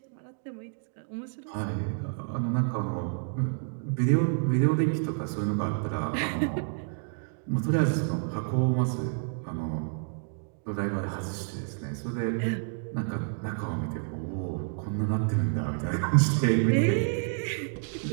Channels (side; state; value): left; silent; 58 dB below the other